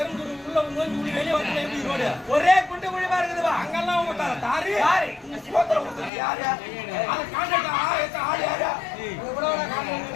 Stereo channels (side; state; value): right; drops out; at 6.1 s